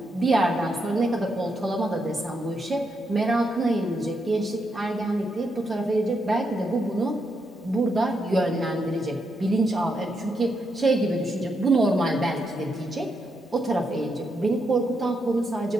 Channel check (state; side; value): normal; both; correlation 0.81